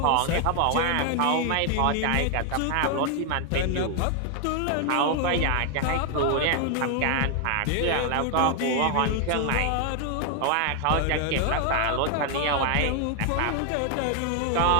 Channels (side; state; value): both; different; correlation 0.00